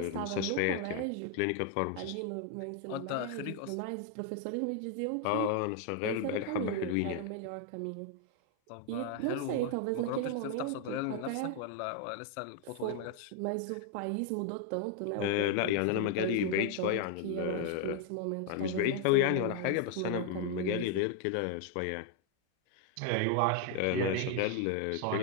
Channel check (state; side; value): different; both; correlation 0.00